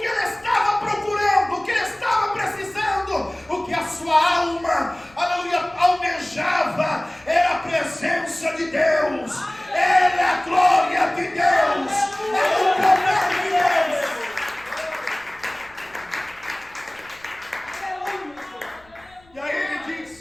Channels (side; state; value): left; noise; rumble, 29 dB below the sound